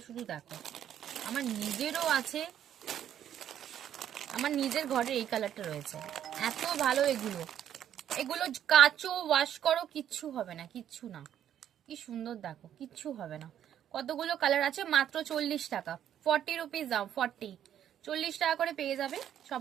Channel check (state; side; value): quieter; left; 10.3 dB